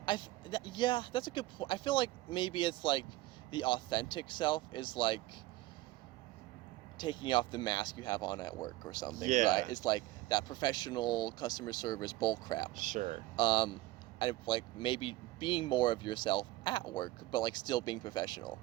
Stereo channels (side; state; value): left; quieter; 17.6 dB